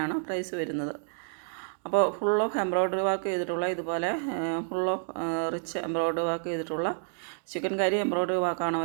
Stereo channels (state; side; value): silent; left; digital silence